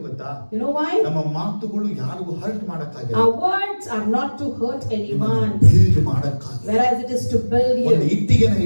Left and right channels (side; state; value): both; inverted; correlation -1.00